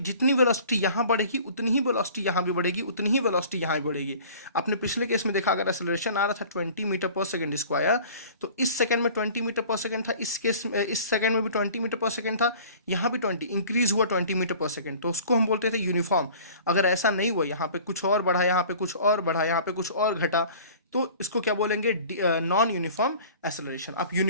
वेलोसिटी यहाँ बढ़ेगी उतनी ही वेलोसिटी यहाँ भी बढ़ेगी, उतनी ही वेलोसिटी यहाँ भी बढ़ेगी। आपने पिछले केस में देखा अगर एक्सेलरेशन आ रहा था 20 मीटर पर सेकंड स्क्वायर, तो इस सेकंड में 20 मीटर पर सेकंड था, इस केस में इस सेकंड में भी 20 मीटर पर सेकंड था, यहाँ भी 20 इंक्रीज हुआ 20 मीटर पर सेकंड, तो उसको हम बोलते थे यूनिफॉर्म। अगर ऐसा नहीं हुआ, यहाँ पे कुछ और बढ़ा, यहाँ पे कुछ और बढ़ा, यहाँ पे कुछ और घटा, तो इसको क्या बोलेंगे नॉन यूनिफॉर्म एक्सेलरेशन। आप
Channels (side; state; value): both; inverted; correlation -0.46